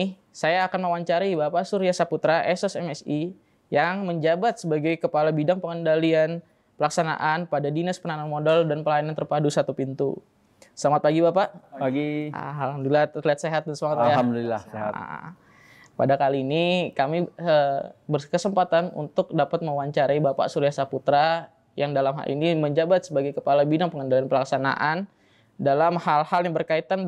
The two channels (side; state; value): both; identical; correlation 1.00